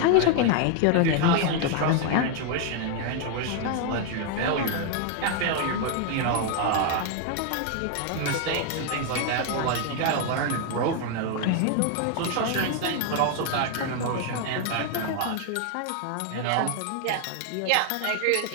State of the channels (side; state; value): both; different; correlation 0.00